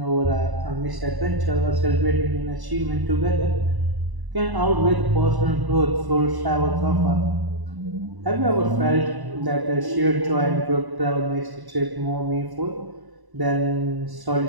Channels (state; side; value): late; left; 1.1 ms